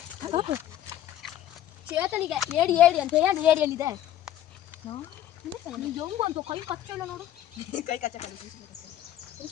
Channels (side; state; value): right; quieter; 12.0 dB